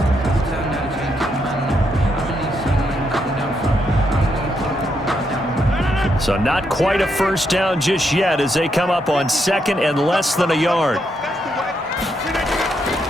So not quite a 1st down just yet as they come up on 2nd and less than a yard.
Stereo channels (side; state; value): both; normal; correlation 0.78